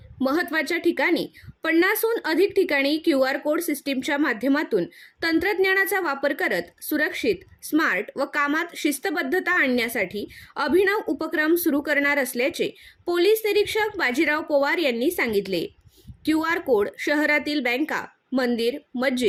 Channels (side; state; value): both; identical; correlation 1.00